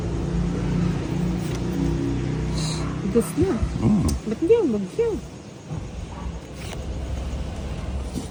Dos na. Ba't hindi yung bagyo?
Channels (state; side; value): identical; both; correlation 1.00